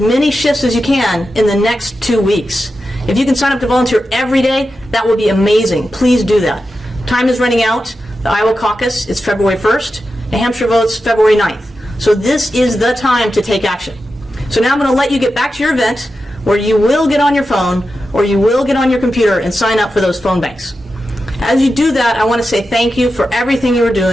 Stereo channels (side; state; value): both; normal; correlation 0.90